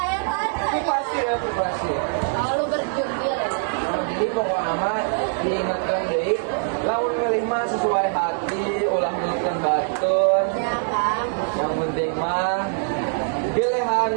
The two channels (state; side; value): silent; left; 59 dB below the other